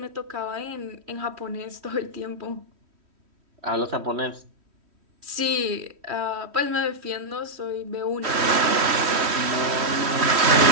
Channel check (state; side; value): late; left; 3.1 ms